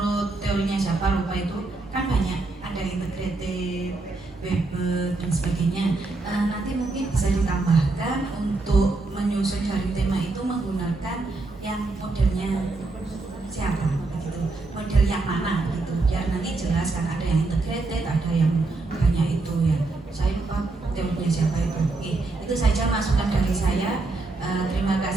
teorinya siapa lupa itu kan banyak, ada integrated, Weber dan sebagainya. Nanti mungkin bisa ditambahkan untuk menyusun jaring tema itu menggunakan yang modelnya siapa gitu, model yang mana gitu, biar nanti jelas kan ada yang integrated, ada yang banyak itu ya. Saya lupa teorinya siapa itu. Oke, itu saja masukan dari saya. Terima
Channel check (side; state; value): left; quieter; 3.4 dB